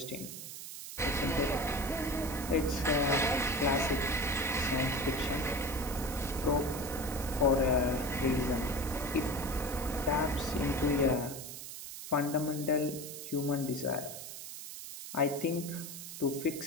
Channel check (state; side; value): noise; right; hiss, 10 dB below the sound